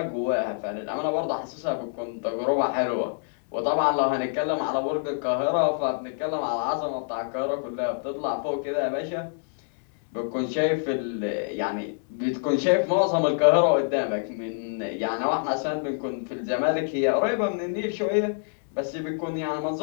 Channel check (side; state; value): right; silent; digital silence